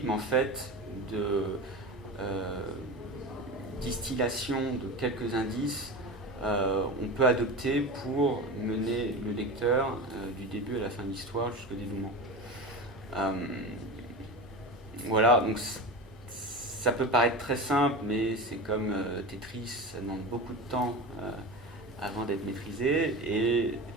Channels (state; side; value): normal; both; correlation 0.27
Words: en fait de distillation de quelques indices on peut adopter pour mener le lecteur du début à la fin de l'histoire jusqu'au dénouement. Voilà, donc ça peut paraître très simple, mais c'est comme Tetris, ça demande beaucoup de temps avant d'être maîtrisé, et